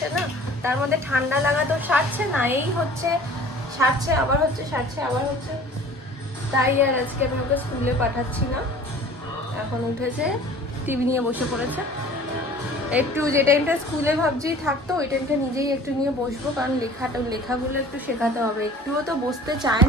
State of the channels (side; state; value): both; normal; correlation 0.46